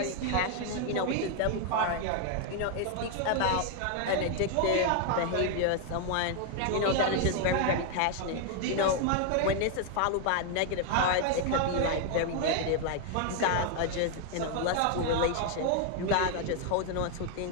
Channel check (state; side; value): different; both; correlation 0.00